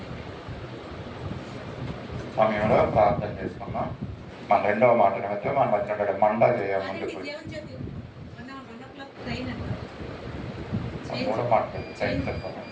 సమయంలో ప్రార్థన చేసుకున్నాం. మన రెండవ మాట నిమిత్తం మన మధ్య మండా చేయ ముందుకు మూడో మాట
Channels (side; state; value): both; identical; correlation 1.00